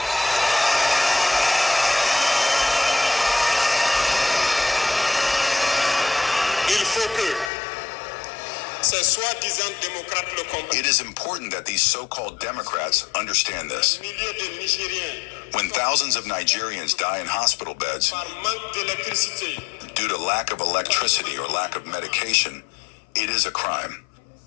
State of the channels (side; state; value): right; drops out; at 7.5 s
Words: It is important that these so-called Democrats understand this. When thousands of Nigerians die in hospital beds due to lack of electricity or lack of medication, it is a crime.